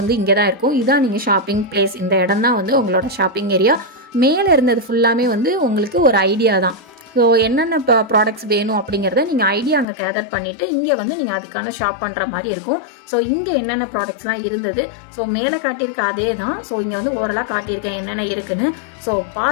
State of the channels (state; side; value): drops out; right; at 9.9 s